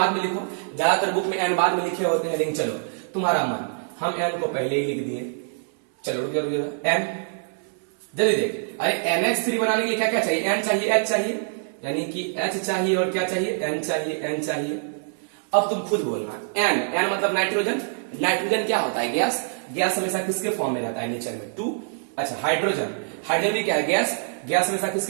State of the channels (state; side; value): silent; left; 60 dB below the other